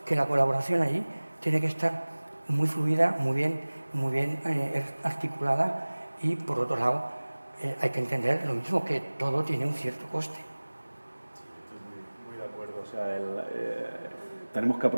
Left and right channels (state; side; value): inverted; both; correlation -1.00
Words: que la colaboración ahí tiene que estar muy fluida, muy bien articulada, y por otro lado hay que entender lo mismo, que todo tiene un cierto coste. Estoy muy de acuerdo. O sea, tenemos que